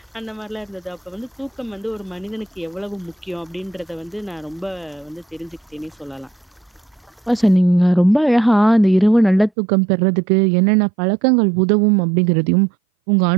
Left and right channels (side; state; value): left; drops out; at 9.5 s